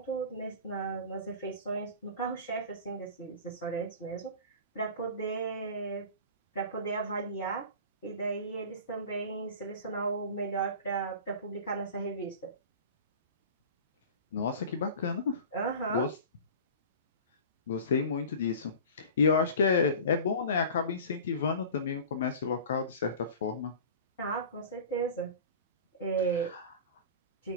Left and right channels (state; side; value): inverted; both; correlation -0.37